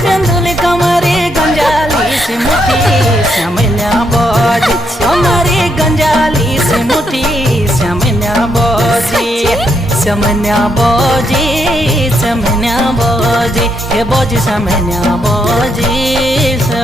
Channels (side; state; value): both; normal; correlation 0.77